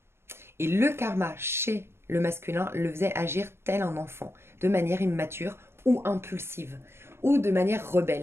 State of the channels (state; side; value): late; left; 0.12 ms